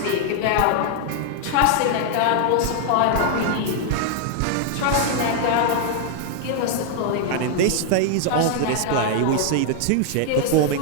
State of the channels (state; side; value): different; both; correlation 0.00